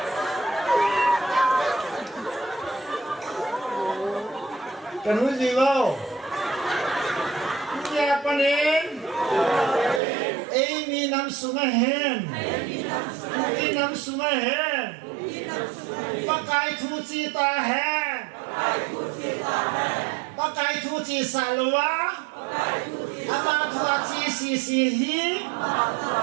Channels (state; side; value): drops out; left; at 10.0 s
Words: kan uji wow, siapa nih? Ini nam sungai hen, ini nam sungai hen, pakai cuci tahen. Pakai cuci salwa, apa cuci sisihi,